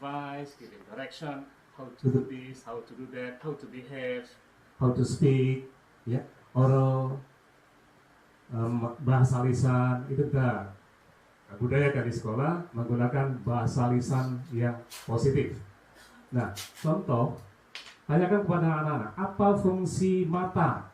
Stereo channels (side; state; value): both; identical; correlation 1.00